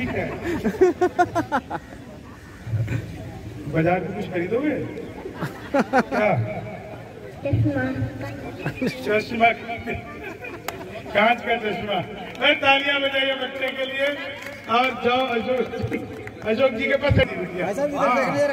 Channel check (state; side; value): identical; both; correlation 1.00